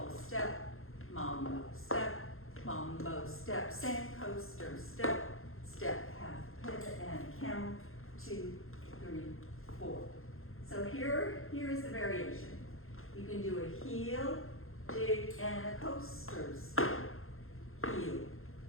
step, mambo step, sand coaster step, step half, pivot and camel, 2, 3, 4. So here is the variation. You can do a heel, dig, and a coaster step. Heel,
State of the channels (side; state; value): right; late; 0.61 ms